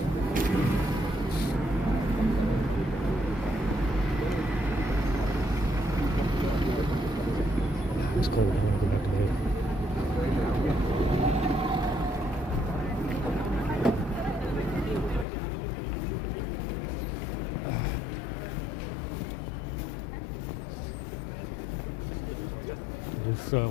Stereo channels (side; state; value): right; drops out; at 15.2 s